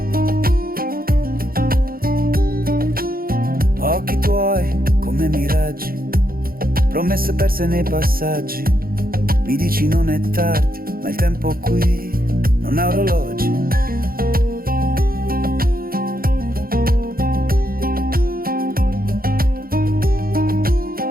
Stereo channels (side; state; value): left; late; 0.42 ms